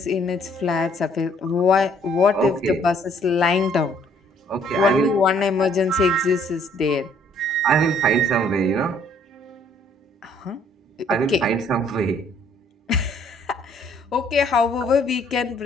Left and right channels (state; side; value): normal; both; correlation 0.62